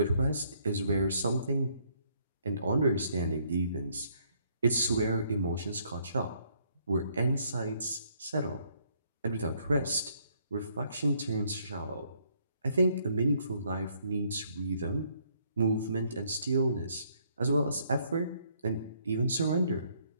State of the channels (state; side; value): inverted; both; correlation -0.69